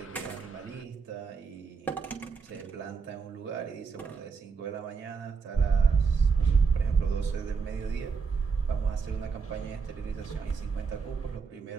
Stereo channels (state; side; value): quieter; left; 5.4 dB